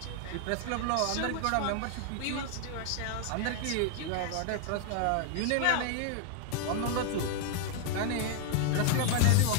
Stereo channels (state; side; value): different; both; correlation 0.00